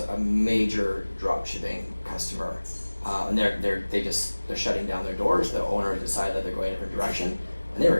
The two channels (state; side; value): inverted; both; correlation -1.00